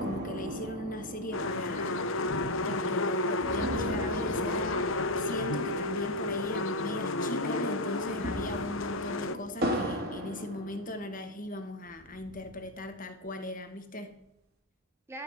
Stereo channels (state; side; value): normal; both; correlation 0.05